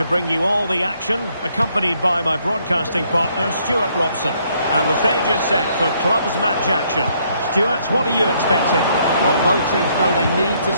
bring you all the action, accompanied by my broadcasting partner, Stuart Robson. And the stage is set for clubs match action. Stuart, what are you expecting? Well, both teams know they need to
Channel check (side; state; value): both; inverted; correlation -0.69